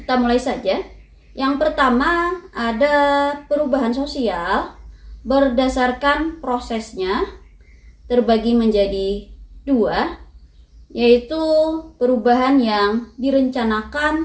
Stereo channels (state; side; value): identical; both; correlation 1.00